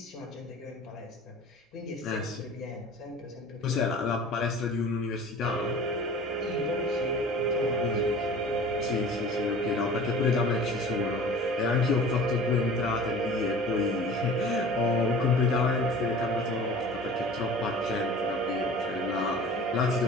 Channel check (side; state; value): both; normal; correlation 0.41